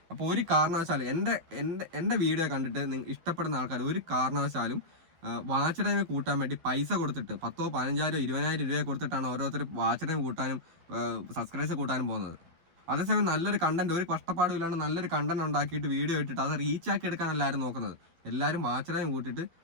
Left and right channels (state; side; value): late; left; 12 ms